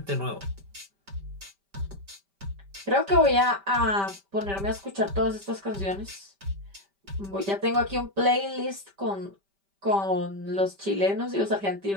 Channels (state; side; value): late; left; 5.1 ms